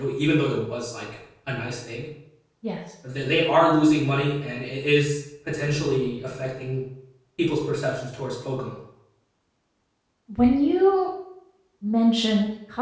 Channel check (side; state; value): both; identical; correlation 1.00